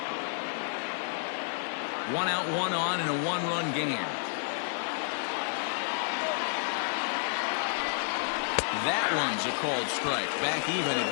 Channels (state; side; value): silent; right; 58 dB below the other